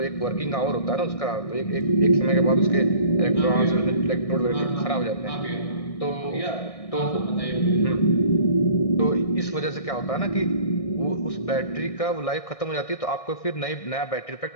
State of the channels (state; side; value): late; right; 1.6 ms